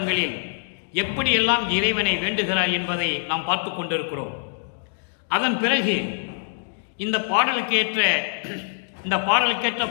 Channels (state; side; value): silent; right; digital silence